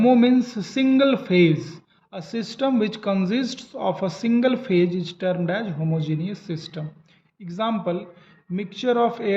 means single phase. A system which consists of a single phase is termed as homogeneous system. Example, mixture of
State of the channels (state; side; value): identical; both; correlation 1.00